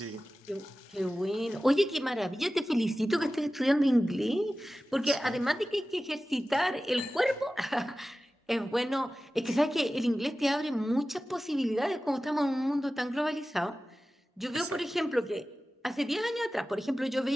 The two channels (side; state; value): both; normal; correlation 0.95